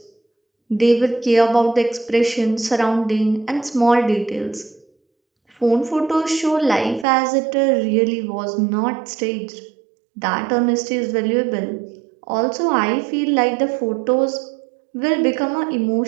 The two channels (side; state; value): left; drops out; at 7.1 s